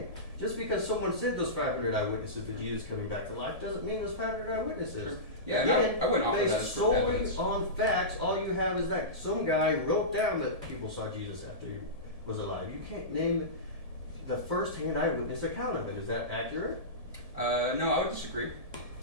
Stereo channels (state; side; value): late; left; 1.7 ms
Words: Just because someone said those 500 eyewitnesses to Jesus coming back to life doesn't mean there's 500 eyewitnesses. Sure. Yeah, again, I wouldn't offer that as solely evidence. on facts, all you have is that some guy wrote down that people saw Jesus after he was alive. You can't name the first-hand eyewitness account of it. Is that accurate? No, I would disagree.